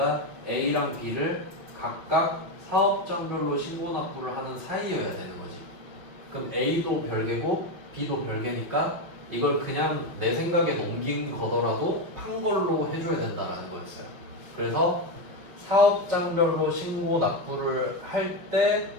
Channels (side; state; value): left; late; 5.9 ms